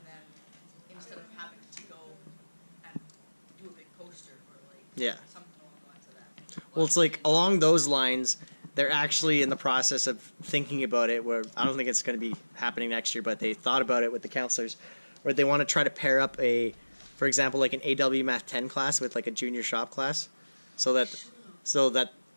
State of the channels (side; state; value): both; inverted; correlation -1.00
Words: then instead of having to go and do a big poster or like Yeah. something along the lines of that. Well, it's like along those lines, they're actually in the process of thinking about it. Where I don't think it's going to be happening next year, but they thought about it with the counselors, where they want to try to pair up for example, like an AW Math 10 class with like a junior shop class, so that